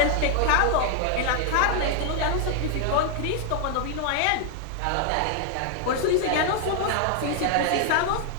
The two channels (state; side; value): different; both; correlation 0.00